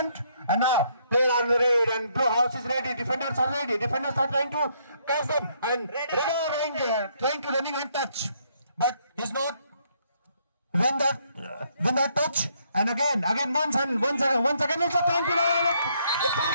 And now, play on the raid, and Blue House is ready. Defenders are ready. Defenders are trying to catch them, and Raider trying to running and touch, but he's not win that touch. And again, once again, it's a time to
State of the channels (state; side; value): inverted; both; correlation -0.70